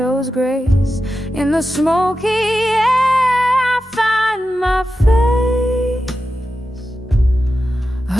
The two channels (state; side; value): normal; both; correlation 0.91